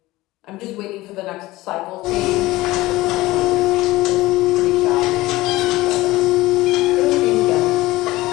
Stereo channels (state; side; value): quieter; right; 18.7 dB